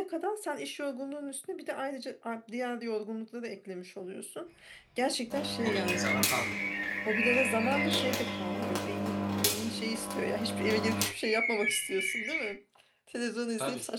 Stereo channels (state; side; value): identical; both; correlation 1.00